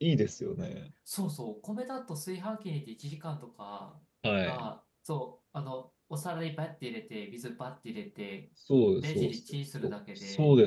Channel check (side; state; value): both; identical; correlation 1.00